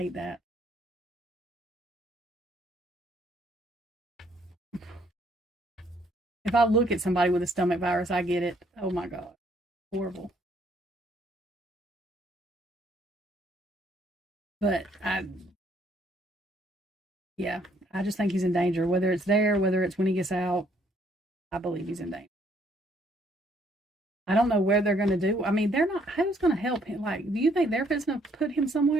that. If I look at somebody with a stomach virus, I get it. Oh, my God. Horrible. But yeah, I just think he's in danger. Whether it's there, whether it's when he gets out, I believe he's in danger. I don't know where they're going to do. I mean, they're not. Who's going to help him? Like, do you think they're going to put him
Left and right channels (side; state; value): both; normal; correlation 0.67